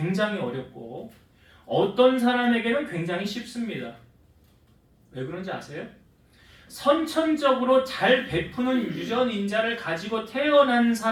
어렵고 어떤 사람에게는 굉장히 쉽습니다. 왜 그런지 아세요? 선천적으로 잘 베푸는 유전인자를 가지고 태어난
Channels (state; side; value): identical; both; correlation 1.00